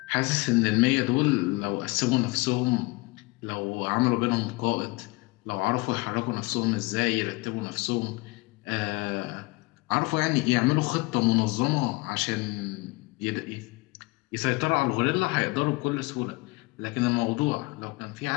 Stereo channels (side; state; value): right; quieter; 24.3 dB